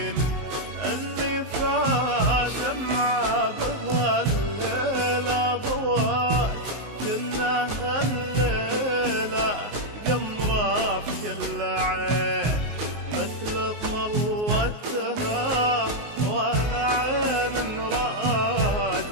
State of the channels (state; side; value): late; left; 19 ms